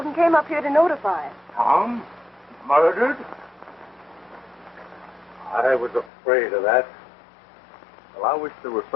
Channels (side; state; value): right; drops out; at 6.1 s